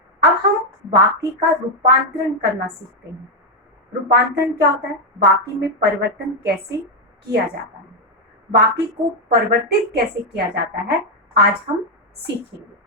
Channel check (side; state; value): both; normal; correlation 0.02